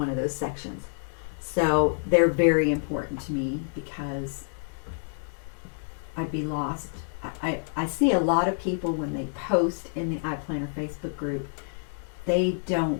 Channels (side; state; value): right; silent; 59 dB below the other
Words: of those sections. So they're very important to me because I'd be lost. I see a lot of people when they post in the iPlanner Facebook group, they